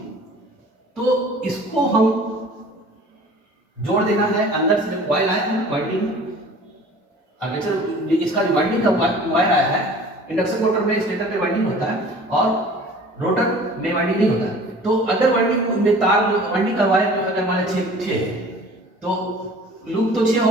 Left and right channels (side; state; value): both; normal; correlation 0.46